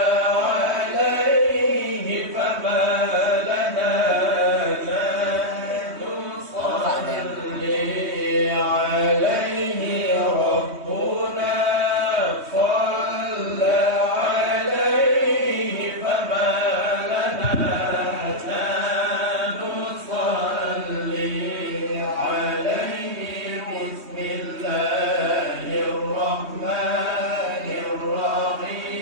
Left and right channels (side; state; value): left; late; 3.2 ms